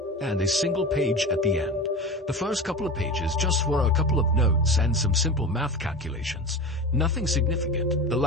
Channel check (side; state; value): both; normal; correlation 0.30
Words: and a single page at the end. The first couple of pages just were a couple of notes and some simple math calculations. Nothing significant. The